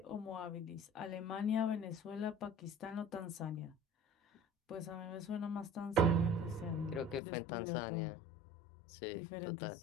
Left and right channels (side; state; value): right; drops out; at 7.2 s